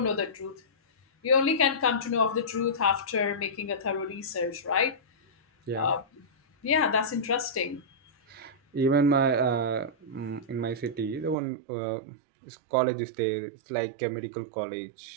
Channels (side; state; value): left; drops out; at 11.4 s